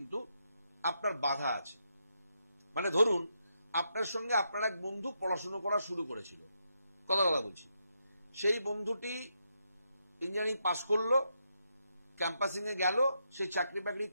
আপনার বাধা আছে। মানে ধরুন, আপনার সঙ্গে আপনার এক বন্ধু পড়াশোনা করা শুরু করেছিল, কথা বলছি, সেই বন্ধুটি ইঞ্জিনিয়ারিং পাস করলো, ক্যাম্পাসিং এ গেল, সে চাকরি বাকরি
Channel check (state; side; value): inverted; both; correlation -0.81